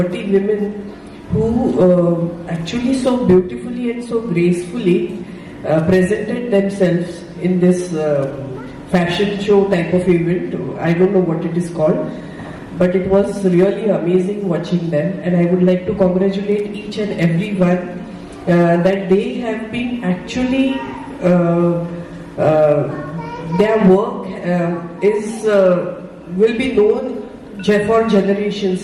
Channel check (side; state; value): both; identical; correlation 1.00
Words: women who actually so beautifully and so gracefully presented themselves in this fashion show type of event. I don't know what it is called, but it was really amazing watching them, and I would like to congratulate each and every one that they have been actually their work will be known for